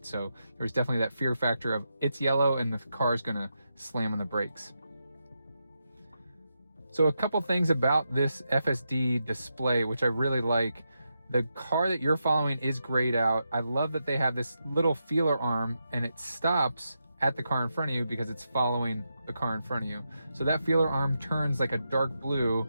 So there was definitely that fear factor of it's yellow and the car's gonna slam on the brakes. So a couple things about this FSD display, which I really like. The car that you're following is grayed out. I love that they have this little feeler arm and it stops at the car in front of you because it's following the car in front of you. So that feeler arm turns like a dark blue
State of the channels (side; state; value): both; inverted; correlation -0.86